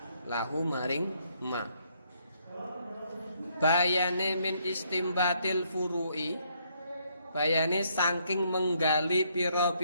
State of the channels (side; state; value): both; inverted; correlation -0.71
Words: bayane min istimbatil furu'i bayane saking menggali